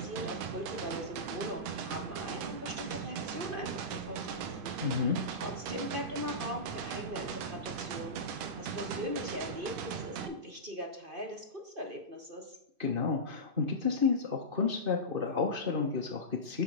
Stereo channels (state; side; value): late; left; 2.5 ms